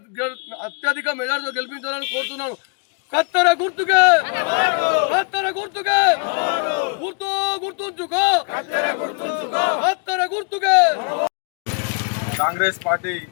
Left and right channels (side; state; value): right; quieter; 37.6 dB